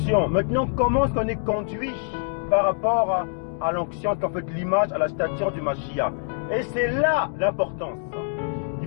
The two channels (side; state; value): right; silent; 62 dB below the other